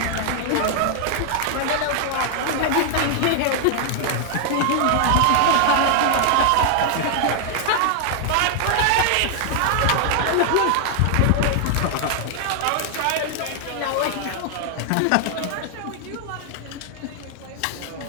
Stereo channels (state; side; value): different; both; correlation 0.00